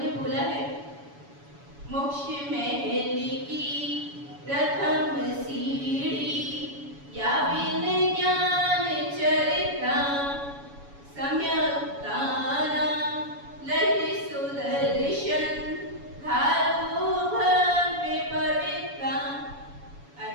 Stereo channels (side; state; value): left; late; 7.1 ms